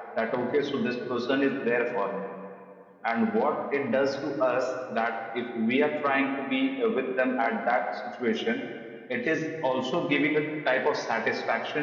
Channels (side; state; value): both; identical; correlation 1.00